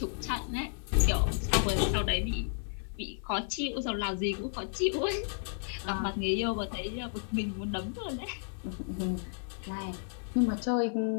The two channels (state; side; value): silent; right; 56 dB below the other